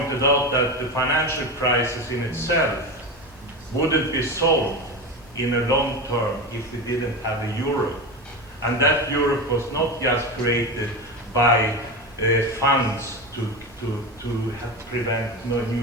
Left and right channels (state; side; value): normal; both; correlation 0.22